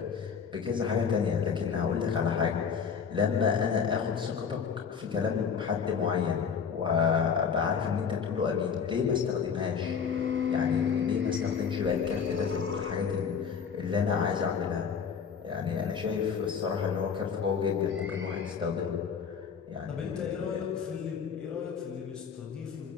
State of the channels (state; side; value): quieter; right; 6.6 dB